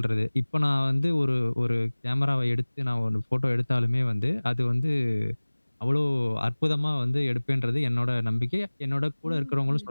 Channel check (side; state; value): both; inverted; correlation -1.00